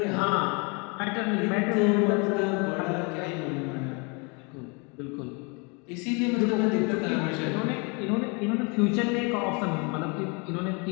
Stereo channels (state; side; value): quieter; right; 31.9 dB